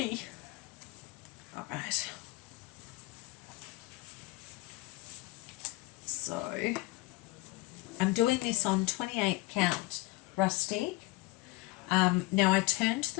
Alright. Right. So I'm doing this on 28 count rustic. Now I turned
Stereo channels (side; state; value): right; quieter; 21.3 dB